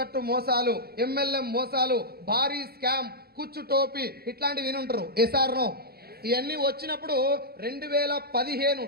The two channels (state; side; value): late; left; 0.45 ms